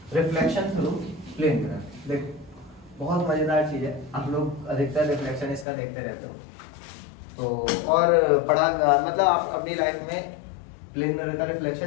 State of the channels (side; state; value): right; drops out; at 5.7 s